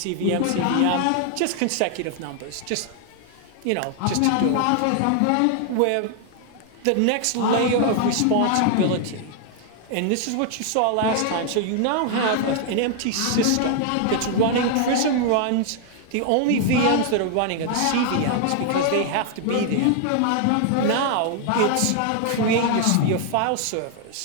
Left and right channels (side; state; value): both; different; correlation 0.00